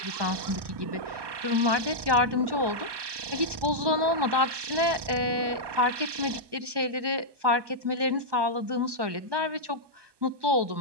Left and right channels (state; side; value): late; left; 1.2 ms